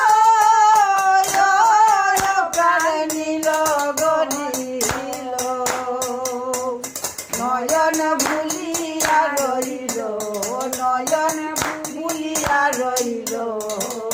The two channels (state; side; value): identical; both; correlation 1.00